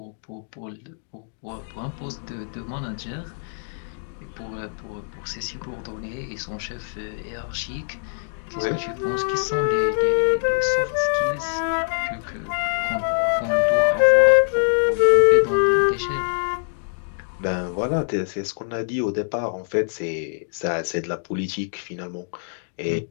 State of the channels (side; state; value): right; silent; digital silence